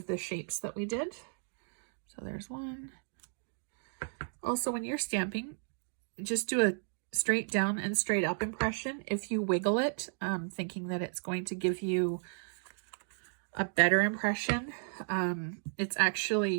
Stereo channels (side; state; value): left; silent; digital silence